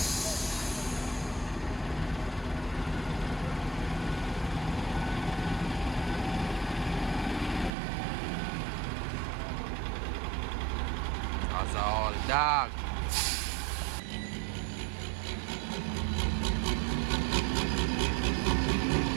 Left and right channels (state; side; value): drops out; left; at 7.7 s